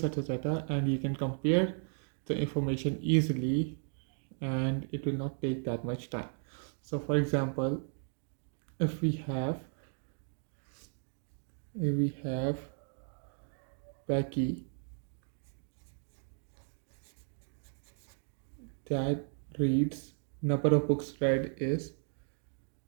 of data and you can compare the information easily and it will not take that much time. So for example, if we have Becky that reads number of books read is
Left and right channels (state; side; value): silent; left; 54 dB below the other